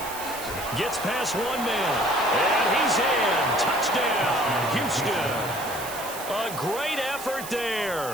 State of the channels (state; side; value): noise; right; hiss, 11 dB below the sound